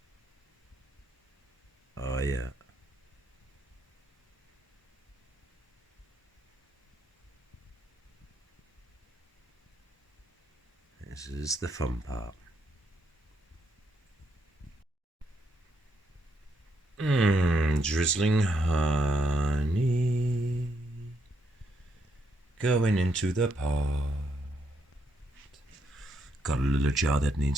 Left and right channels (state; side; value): normal; both; correlation 0.77